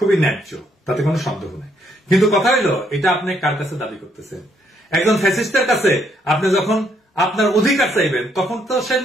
ন্যায্য, তাতে কোনো সন্দেহ নেই। কিন্তু কথা হইল, এটা আপনি কার কাছে দাবি করতেছেন? একজন ফ্যাসিস্টের কাছে আপনি যখন আপনার অধিকার চাইবেন, তখন তো সে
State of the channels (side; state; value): both; normal; correlation 0.72